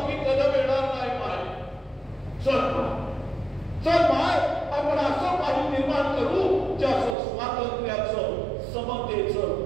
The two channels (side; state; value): left; drops out; at 7.2 s